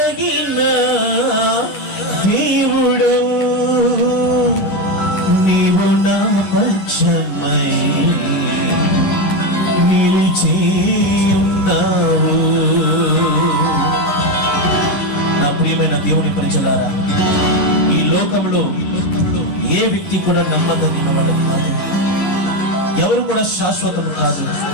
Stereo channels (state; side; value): late; right; 11 ms